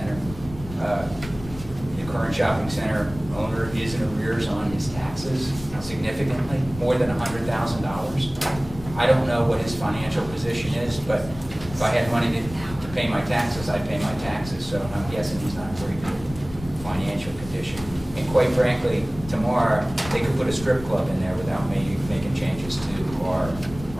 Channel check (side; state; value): left; noise; rumble, 14 dB below the sound